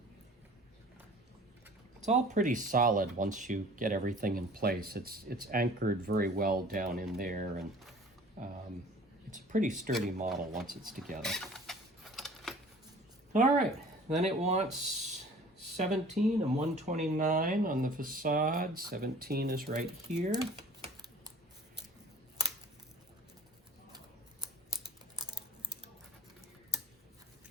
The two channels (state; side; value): normal; both; correlation 0.47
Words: It's all pretty solid once you get everything in place. It's anchored very well down in there, and it's a pretty sturdy model once it's together. All right, then it wants 17 and 129 on the facade. 17 is right here.